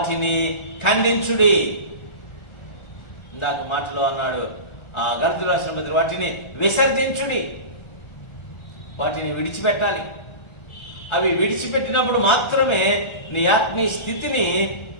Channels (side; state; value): right; late; 1.4 ms